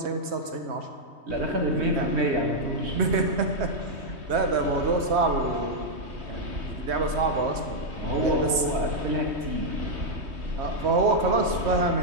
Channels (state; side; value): late; left; 3.2 ms